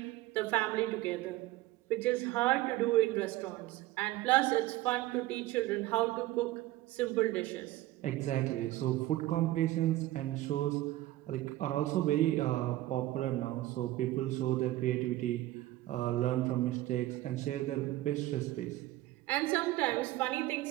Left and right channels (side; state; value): left; quieter; 16.5 dB